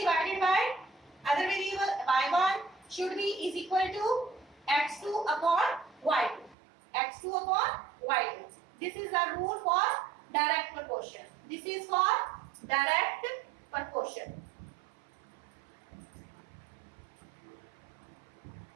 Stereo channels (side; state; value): left; drops out; at 6.6 s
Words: by other variable y1 should be is equal to x2 upon y2. This is the rule for direct proportion.